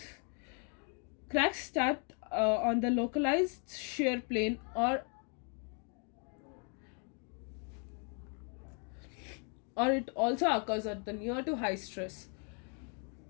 Cracks start on the localized shear plane, or it also occurs at the near to high stress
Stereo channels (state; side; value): quieter; right; 39.3 dB